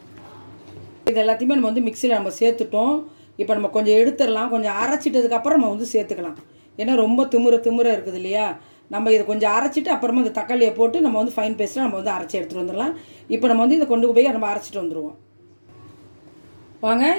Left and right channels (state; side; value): inverted; both; correlation -1.00